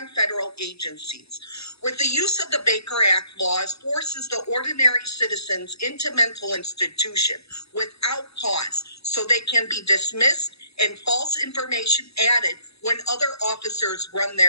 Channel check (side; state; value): right; late; 0.78 ms